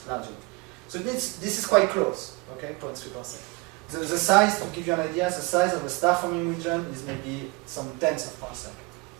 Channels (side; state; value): left; quieter; 26.1 dB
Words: larger. So this is quite close, okay, 0.3 parsec. The size, to give you an idea, the size of a star-forming region is maybe some tenths of parsec.